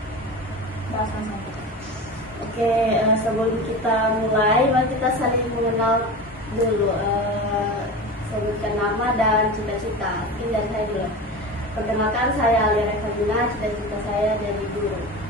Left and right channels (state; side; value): normal; both; correlation 0.29